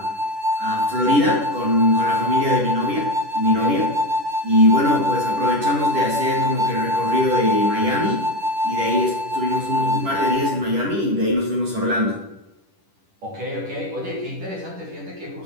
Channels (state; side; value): late; left; 10 ms